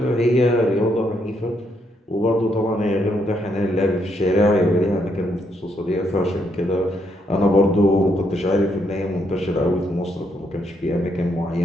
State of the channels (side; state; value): both; normal; correlation 0.75